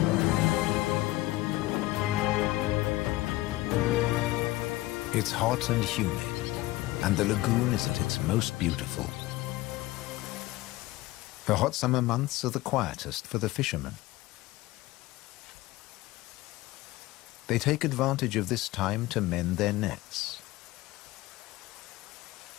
It's hot and humid, and the lagoon is at its most beautiful. The hot summer months are the quietest for the fishermen. They take advantage of this time to mend their nets.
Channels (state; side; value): quieter; right; 18.1 dB